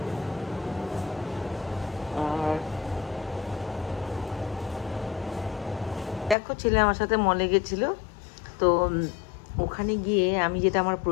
আর দেখো, ছেলে আমার সাথে মলে গেছিল, তো ওখানে গিয়ে আমি যেটা আমার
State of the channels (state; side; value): drops out; right; at 6.4 s